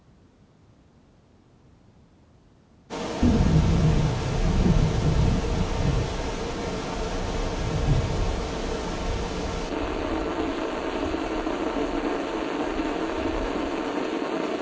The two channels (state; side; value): identical; both; correlation 1.00